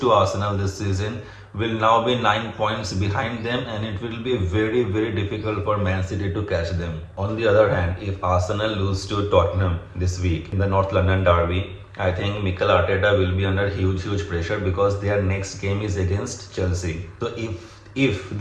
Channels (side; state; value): both; identical; correlation 1.00